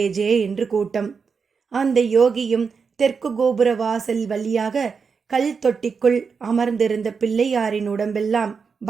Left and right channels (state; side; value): quieter; left; 5.5 dB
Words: ஜே என்று கூட்டம். அந்த யோகியும் தெற்கு கோபுர வாசல் வழியாக கல் தொட்டிக்குள் அமர்ந்திருந்த பிள்ளையாரின் உடம்பெல்லாம்